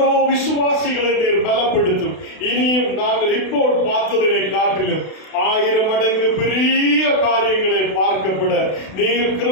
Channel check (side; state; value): right; late; 32 ms